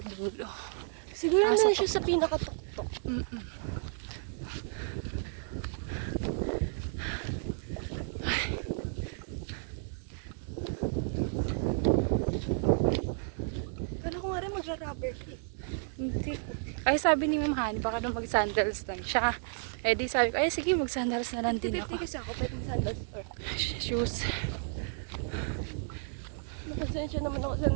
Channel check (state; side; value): silent; left; 56 dB below the other